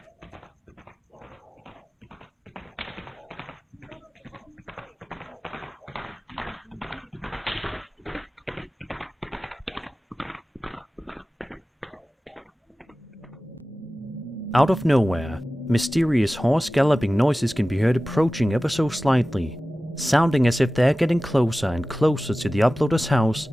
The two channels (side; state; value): both; normal; correlation 0.96